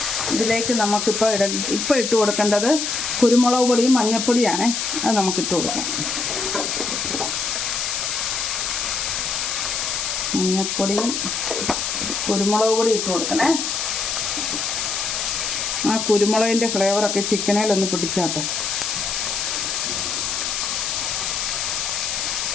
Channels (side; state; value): left; noise; hiss, 1 dB below the sound